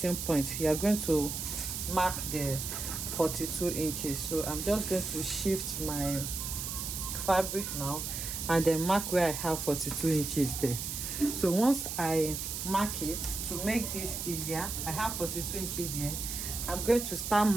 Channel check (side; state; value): right; noise; hiss, 4 dB below the sound